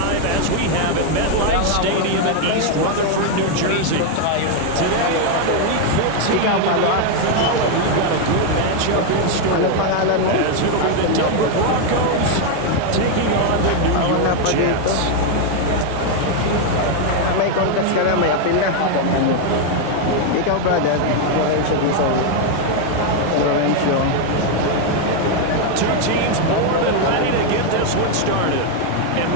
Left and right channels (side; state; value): both; different; correlation 0.01